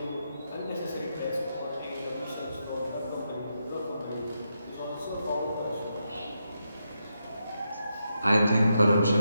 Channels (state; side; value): inverted; both; correlation -0.84